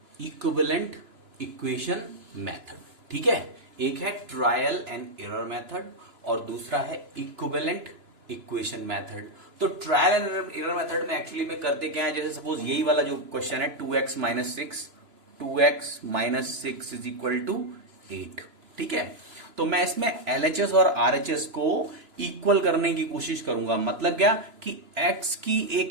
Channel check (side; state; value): left; late; 2.9 ms